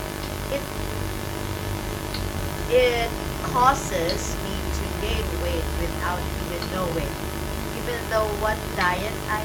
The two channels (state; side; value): identical; both; correlation 1.00